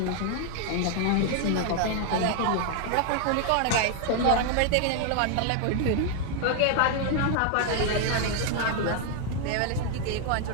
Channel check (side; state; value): both; different; correlation 0.00